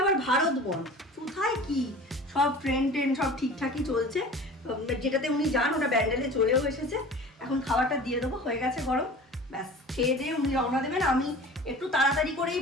আবার ভারত বন, কোথায় কি সব ট্রেন সব ঠিকঠাকই চলছে, যেটাতে উনি যান ওটা ব্যান্ডেলে চলেও এসেছে। এখন খাবারটা দিয়ে দেবো, হয়ে গেছে গরম, ব্যাস খেয়ে দিয়ে উনি রওনা দেবেন। আমি একটু তাড়াতাড়ি করেই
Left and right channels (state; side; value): normal; both; correlation 0.40